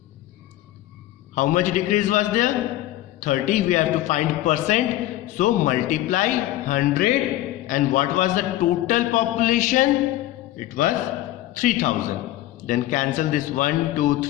How much decrease was there? 30. We have to find percent. So multiply 100. And what was the total population? It was 3000. Then cancel this 1, 2,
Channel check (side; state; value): right; quieter; 15.1 dB